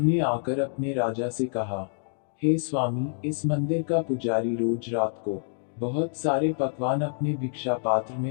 ने आकर अपने राजा से कहा, हे स्वामी, इस मंदिर का पुजारी रोज रात को बहुत सारे पकवान अपने भिक्षा पात्र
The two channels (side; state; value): right; silent; digital silence